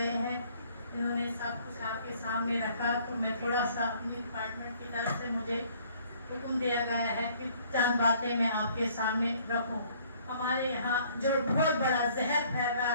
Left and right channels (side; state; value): both; inverted; correlation -0.59